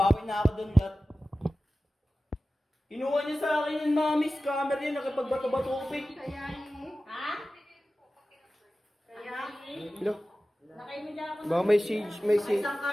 na ako doon lahat. Kinuha niya sa akin yung mami scammer yun, nakipagbato-batupig. Kaya eh. Ha? Kaya? Hello? Lakay mo dyan ako. Baka may siege, may siege. Isang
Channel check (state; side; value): normal; both; correlation 0.95